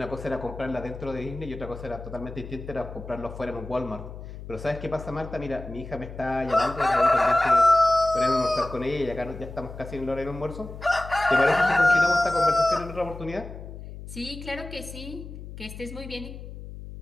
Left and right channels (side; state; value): left; noise; hum, 12 dB below the sound